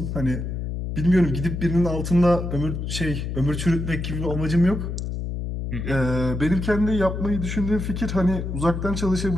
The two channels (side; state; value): left; noise; hum, 4 dB below the sound